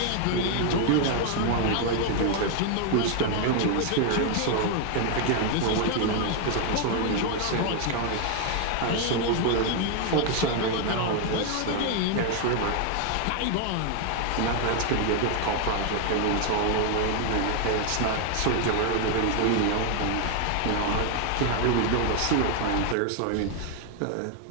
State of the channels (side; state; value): both; different; correlation 0.01